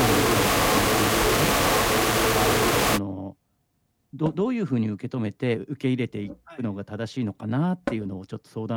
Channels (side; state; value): both; identical; correlation 1.00